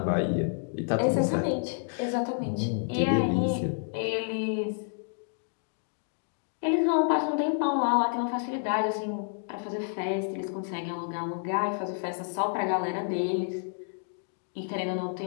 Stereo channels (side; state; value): right; silent; digital silence